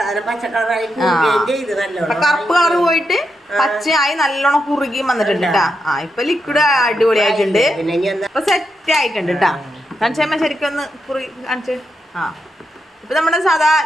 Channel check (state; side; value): normal; both; correlation 0.84